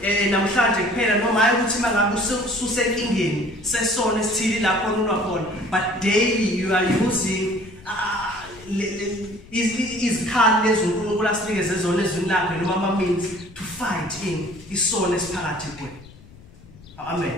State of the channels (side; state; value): left; noise; rumble, 21 dB below the sound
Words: namhlanje kuphela noma hayi ukuthi mangabe ususenkingeni sesono esithili lapho unwa khona, but daily you are using izikhali lezi uNkulunkulu asinikeze zona ezweni lakhe noma ama-means to fight in isono esiphakathi kwethu.